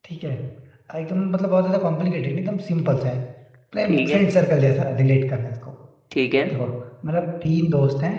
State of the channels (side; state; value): both; identical; correlation 1.00